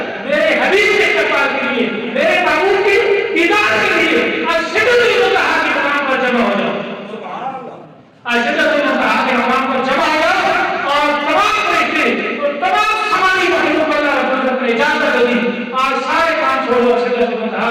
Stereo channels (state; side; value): identical; both; correlation 1.00